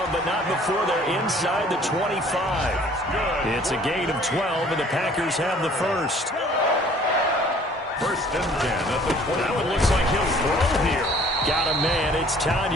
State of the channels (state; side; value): normal; both; correlation 0.54